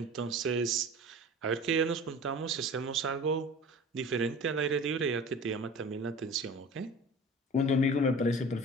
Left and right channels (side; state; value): both; normal; correlation 0.39